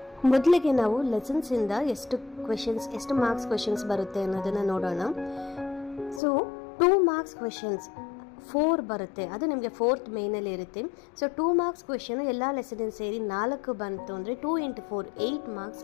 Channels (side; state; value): right; drops out; at 6.2 s